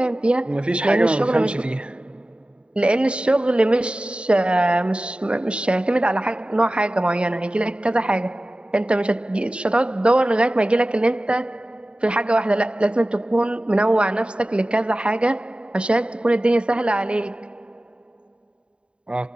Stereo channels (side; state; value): left; late; 0.054 ms